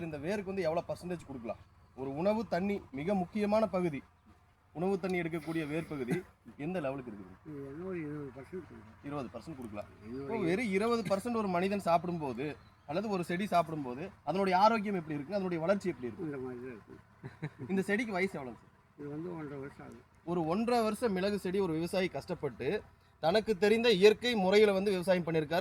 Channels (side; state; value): both; identical; correlation 1.00